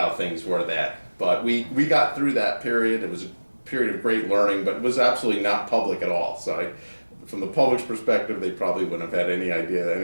things were that. But we got through that period. It was a period of great learning, but it was absolutely not public at all. So from the public's perspective, they probably wouldn't have had any idea that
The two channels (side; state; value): both; inverted; correlation -1.00